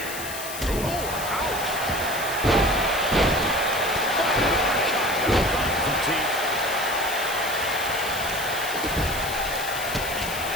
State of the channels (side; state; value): left; noise; hiss, 8 dB below the sound